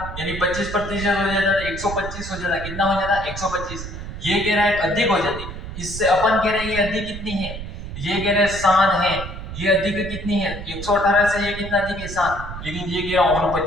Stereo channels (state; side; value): noise; right; rumble, 9 dB below the sound